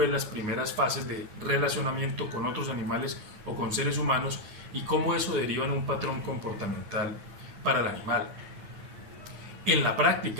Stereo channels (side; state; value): left; late; 9.6 ms